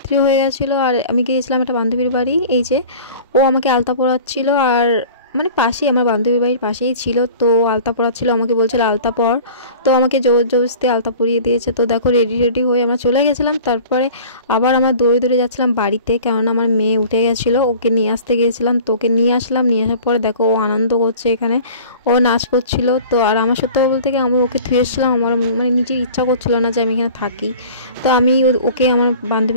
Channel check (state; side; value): inverted; both; correlation -0.42